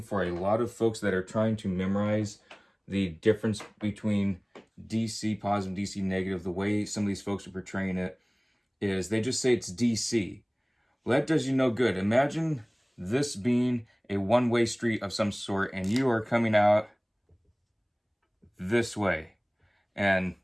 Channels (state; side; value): identical; both; correlation 1.00